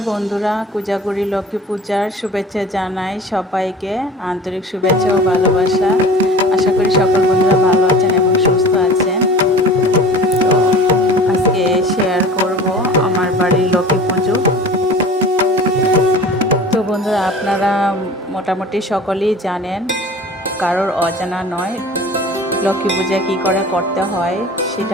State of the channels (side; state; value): both; normal; correlation 0.41